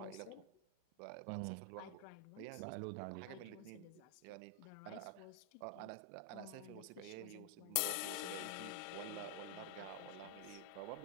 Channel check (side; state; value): both; different; correlation 0.00